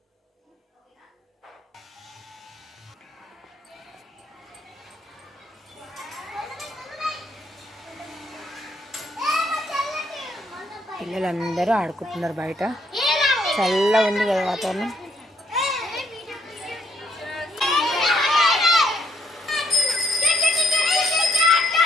పిల్లలందరూ ఆడుకుంటున్నారు బయట, చల్లగా ఉంది కదా వాతావరణం.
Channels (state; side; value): normal; both; correlation 0.71